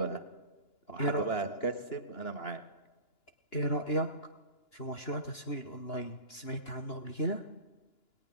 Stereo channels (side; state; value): right; late; 2.9 ms